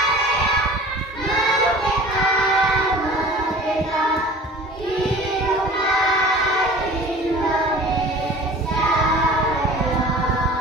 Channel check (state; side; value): normal; both; correlation 0.43